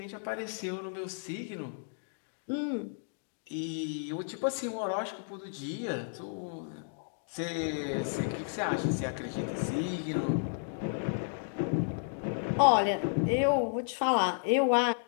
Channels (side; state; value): right; silent; digital silence